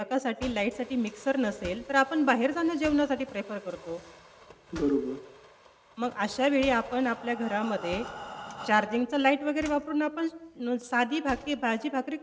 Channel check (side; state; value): both; identical; correlation 1.00